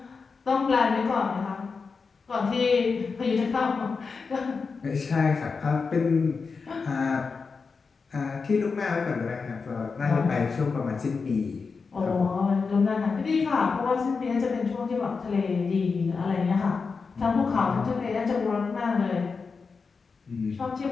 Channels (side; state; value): right; quieter; 4.9 dB